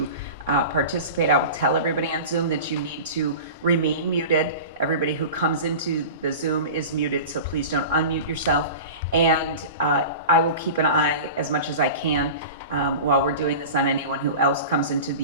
participate. I will tell everybody on Zoom that you need to remain muted. Everybody who comes into the Zoom is muted, so please don't unmute yourself. And I will keep an eye as much as I can while we're doing this on anyone who else comes into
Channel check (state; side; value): inverted; both; correlation -0.33